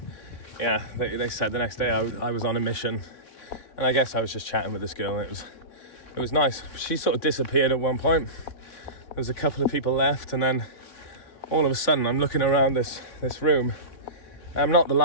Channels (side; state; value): right; late; 3.2 ms